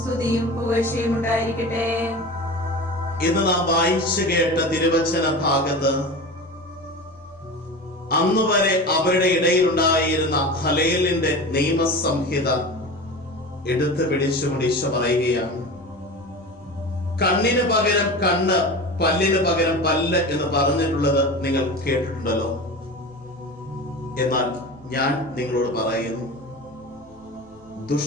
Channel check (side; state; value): both; normal; correlation 0.30